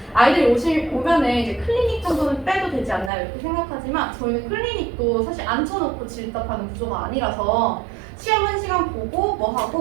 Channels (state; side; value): drops out; left; at 3.1 s